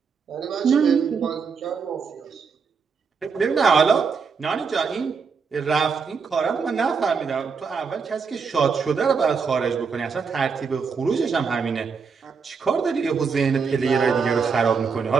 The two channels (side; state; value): left; quieter; 5.6 dB